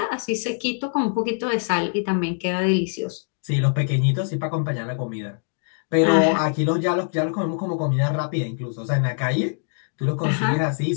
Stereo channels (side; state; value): right; silent; digital silence